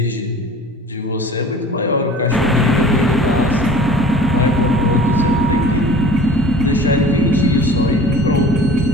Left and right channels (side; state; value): both; normal; correlation 0.45